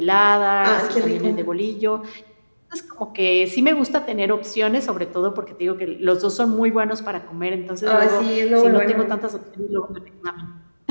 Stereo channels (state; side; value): inverted; both; correlation -1.00